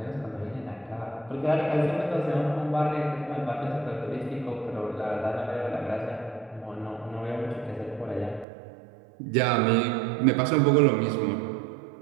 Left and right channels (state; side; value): drops out; left; at 8.5 s